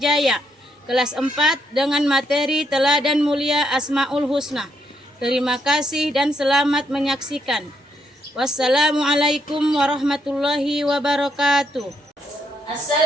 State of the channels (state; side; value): normal; both; correlation 0.75